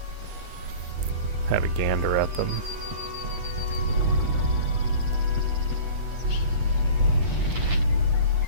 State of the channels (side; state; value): left; late; 8.5 ms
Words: have a gander at them.